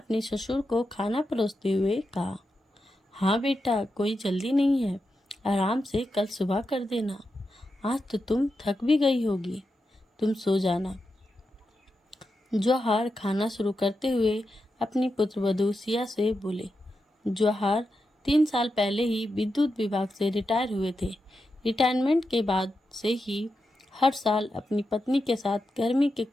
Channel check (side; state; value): both; normal; correlation 0.88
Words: ससुर को खाना परोसते हुए कहा। हाँ बेटा, कोई जल्दी नहीं है, आराम से कल सुबह कर देना। आज तो तुम थक भी गई होगी, तुम सो जाना। जौहर खाना शुरू करते हुए अपनी पुत्रवधू सिया से बोले। जौहर 3 साल पहले ही विद्युत विभाग से रिटायर हुए थे। रिटायरमेंट के बाद से ही हर साल अपनी पत्नी के साथ गर्मी के